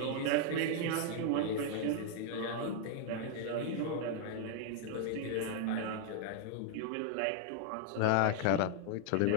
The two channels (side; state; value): both; different; correlation 0.00